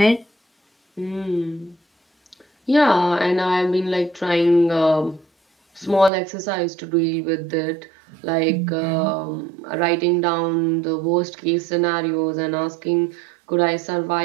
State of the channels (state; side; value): drops out; left; at 6.1 s